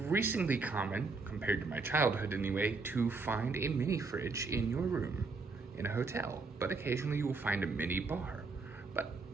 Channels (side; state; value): left; quieter; 4.0 dB